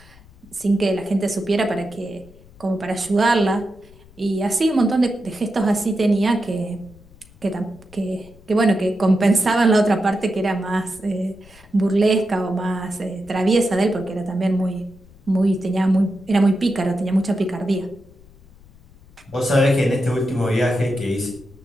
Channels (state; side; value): noise; left; rumble, 25 dB below the sound